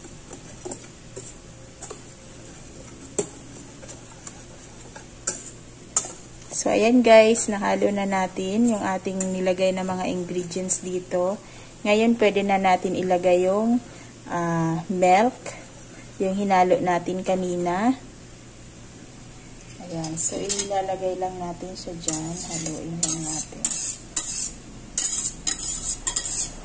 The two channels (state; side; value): identical; both; correlation 1.00